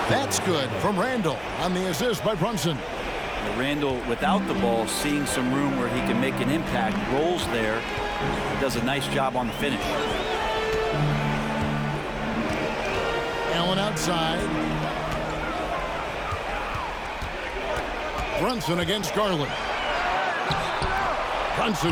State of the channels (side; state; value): both; identical; correlation 1.00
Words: That's good from Randall on the assist by Brunson. Randall, without the ball, seeing some room where he can make an impact, rolls there, does a nice job on the finish. Allen outside. Brunson against Garland.